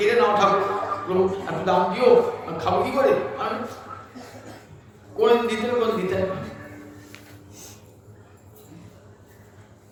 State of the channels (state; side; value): identical; both; correlation 1.00